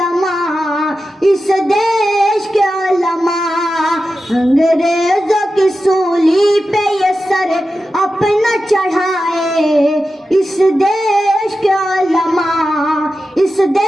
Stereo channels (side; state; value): both; normal; correlation 0.92